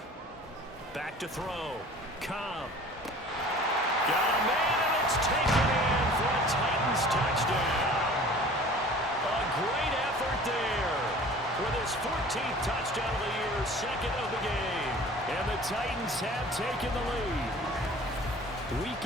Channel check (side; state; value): both; normal; correlation 0.45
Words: Back to throw. Cobb. Got a man, and it's taken in for a Titans touchdown. A great effort there with his 14th touchdown of the year, second of the game. And the Titans have taken the lead.